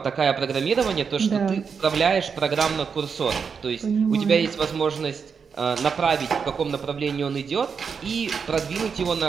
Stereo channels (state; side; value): quieter; left; 6.1 dB